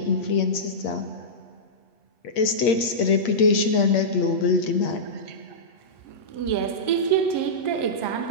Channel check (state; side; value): late; right; 8.6 ms